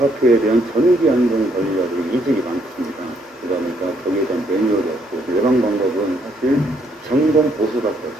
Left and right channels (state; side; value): normal; both; correlation 0.71